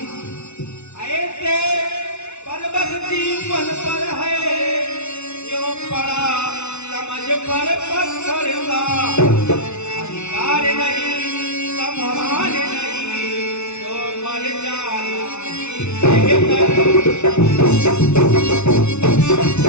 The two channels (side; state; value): right; late; 0.81 ms